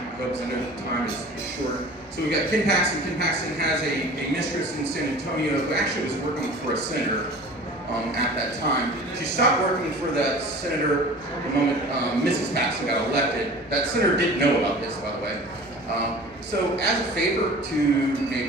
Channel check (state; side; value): normal; both; correlation 0.41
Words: because I know the time is short. So we've got Ken Paxton. Ken Paxton has a mistress in San Antonio who actually was working for a senator at that time. She stopped working for that senator the moment Mrs. Paxton got elected. That senator didn't know about this, by the way. So as a favor to